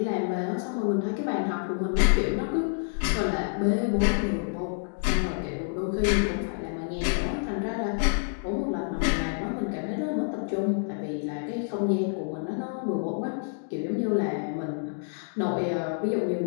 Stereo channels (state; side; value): silent; right; digital silence